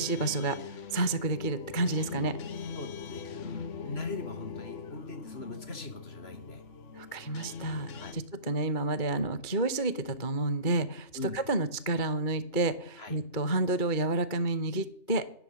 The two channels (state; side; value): late; right; 2.3 ms